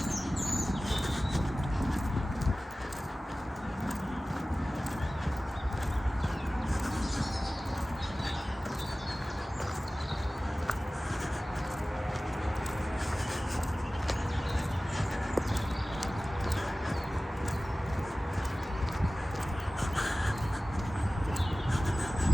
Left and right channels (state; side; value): normal; both; correlation 0.97